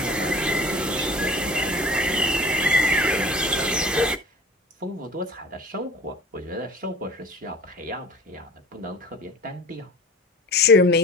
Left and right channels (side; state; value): both; normal; correlation 0.41